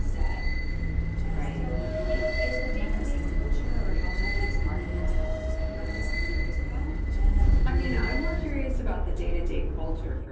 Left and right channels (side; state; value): both; identical; correlation 1.00